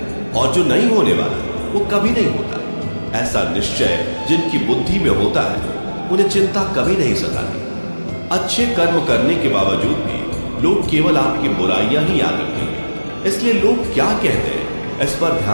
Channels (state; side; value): inverted; both; correlation -1.00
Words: और जो नहीं होने वाला वो कभी नहीं होता। ऐसा निश्चय जिनकी बुद्धि में होता है, उन्हें चिंता कभी नहीं सताती। अच्छे कर्म करने के बावजूद भी लोग केवल आपकी बुराइयां ही याद रखेंगे। इसलिए लोग क्या कहते हैं इस पर